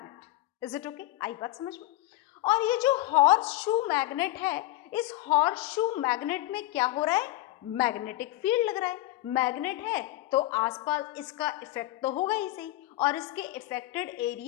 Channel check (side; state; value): right; quieter; 16.7 dB